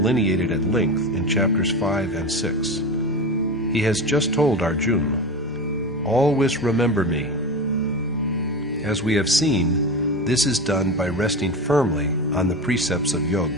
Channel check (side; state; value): both; normal; correlation 0.23